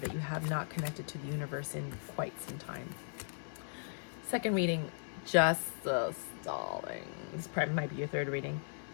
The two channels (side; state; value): right; silent; digital silence